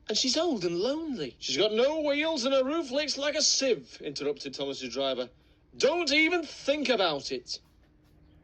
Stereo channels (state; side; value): identical; both; correlation 1.00